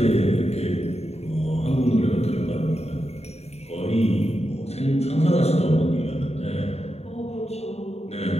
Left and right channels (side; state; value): right; late; 0.30 ms